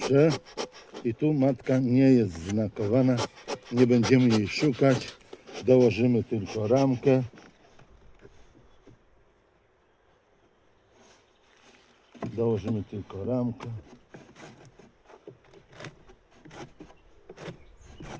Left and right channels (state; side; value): identical; both; correlation 1.00